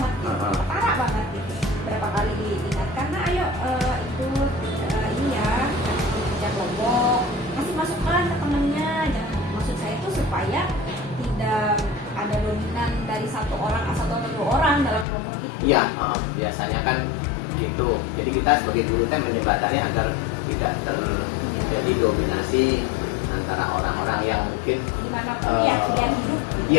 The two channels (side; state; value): right; drops out; at 15.1 s